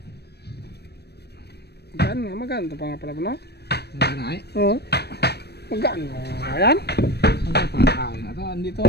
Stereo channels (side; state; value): right; late; 0.47 ms